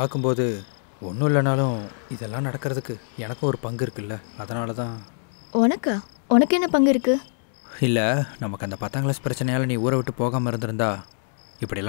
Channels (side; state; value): right; silent; digital silence